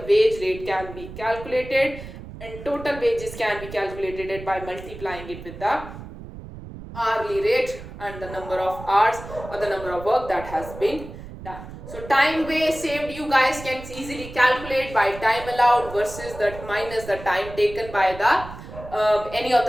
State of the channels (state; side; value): noise; right; rumble, 13 dB below the sound